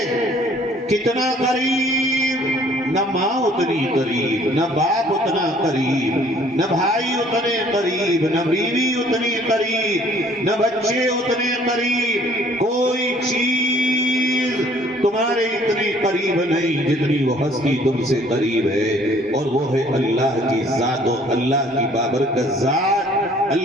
کتنا قریب؟ نہ ماں اتنی قریب، نہ باپ اتنا قریب، نہ بھائی اتنے قریب، نہ بیوی اتنی قریب، نہ بچے اتنے قریب، کوئی چیز تمہارے اتنی قریب نہیں جتنی وہ ہستی تم سے قریب ہے، اور وہ ہے اللہ کی ذات و اللہ کی بابرکت ذات،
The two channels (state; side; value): normal; both; correlation 0.57